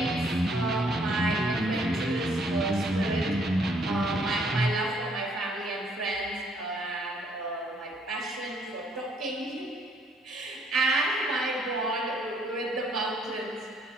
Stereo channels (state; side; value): normal; both; correlation 0.66